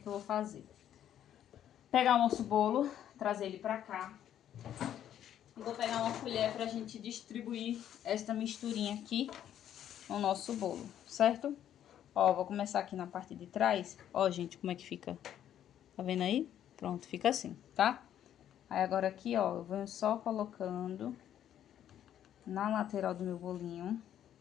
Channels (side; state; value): right; quieter; 10.6 dB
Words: eu vou fazer? Pegar o nosso bolo, trazer ele pra cá. E vou pegar uma colher pra gente distribuir esta misturinha aqui no nosso bolo, certo? Ó, vou começar aqui na parte de trás. Ó, gente, como é que fica? Tá vendo aí? Pronto, fica assim, tá? Aí agora aqui, ó, eu venho só colocando na lateral do meu bolinho.